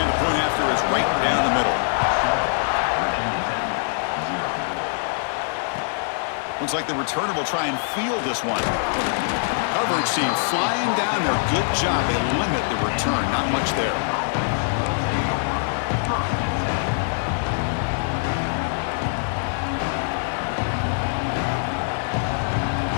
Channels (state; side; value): silent; right; digital silence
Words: the point after is right down the middle. Looks like the returner will try and field this one. Coverage team flying down there. Good job. They limit the return. Not much there.